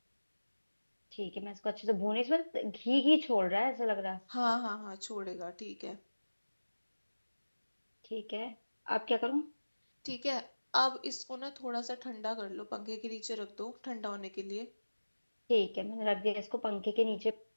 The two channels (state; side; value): inverted; both; correlation -1.00